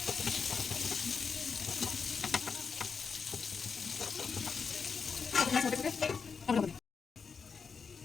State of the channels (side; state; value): right; quieter; 5.6 dB